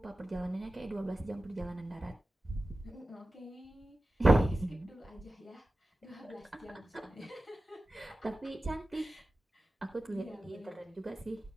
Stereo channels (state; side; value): normal; both; correlation 0.95